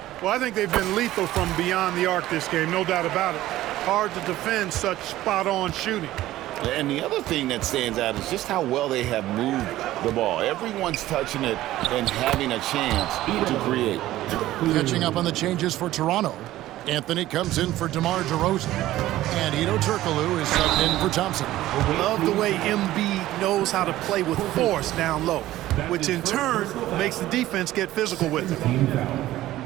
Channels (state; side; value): quieter; left; 15.1 dB